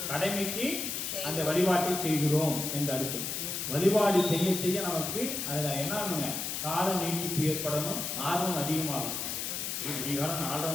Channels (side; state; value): left; noise; hiss, 3 dB below the sound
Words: கடமைக்கு அந்த வழிபாட்டை செய்கிறோம் என்று அர்த்தம். வழிபாடு செய்ய செய்ய நமக்கு அதுல என்ன ஆகுங்க, கால நீட்டிப்பு ஏற்படணும், ஆர்வம் அதிகமாகும். காலம் 4:30